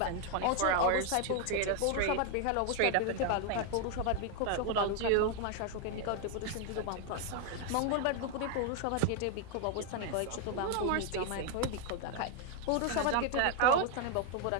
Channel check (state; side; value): different; both; correlation 0.00